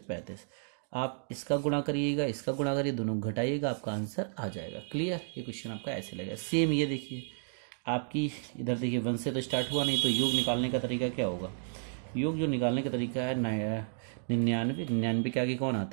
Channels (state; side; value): silent; left; digital silence